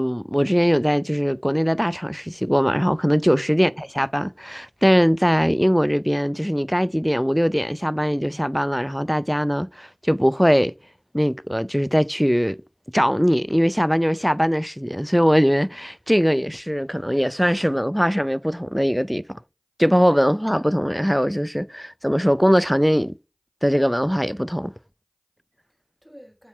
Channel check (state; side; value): identical; both; correlation 1.00